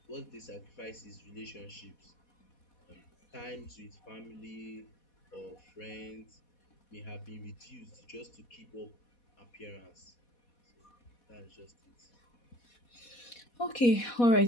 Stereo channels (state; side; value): late; right; 4.1 ms